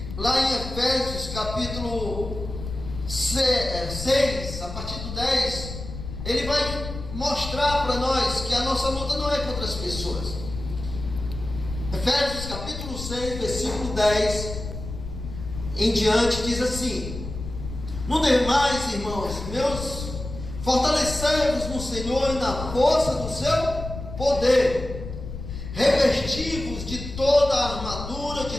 lá em Efésios capítulo 6, a partir do 10, ele vai mostrar para nós que a nossa luta não é contra as pessoas. Efésios capítulo 6, versículo 10 em diante diz assim: no demais, irmãos meus, fortalecei-vos no Senhor e na força do seu poder, revesti-vos de toda a armadura de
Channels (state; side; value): noise; left; rumble, 9 dB below the sound